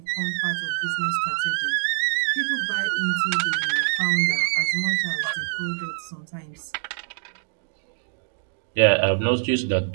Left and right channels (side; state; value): left; silent; digital silence